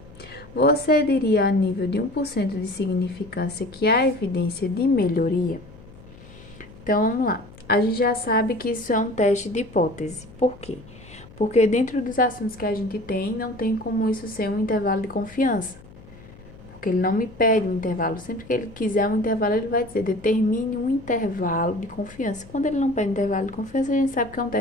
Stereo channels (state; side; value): noise; left; hum, 21 dB below the sound